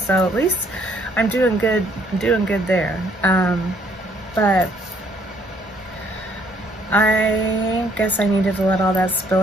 at least I'm doing good there. But I guess I needed to let all that spill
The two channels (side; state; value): both; normal; correlation 0.65